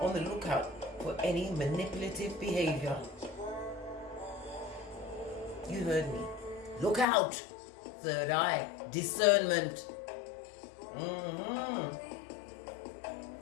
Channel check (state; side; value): drops out; right; at 7.1 s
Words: the lookout for any manipulative behavior. You heard me. Look out! Third eye, discernment.